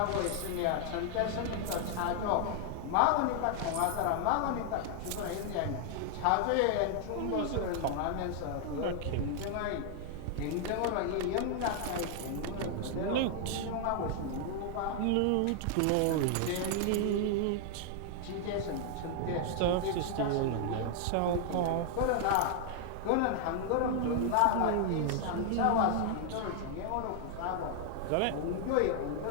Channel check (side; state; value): both; different; correlation 0.00